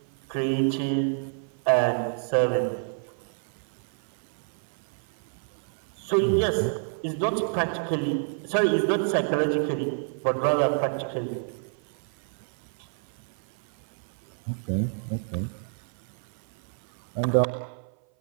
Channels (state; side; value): silent; left; 56 dB below the other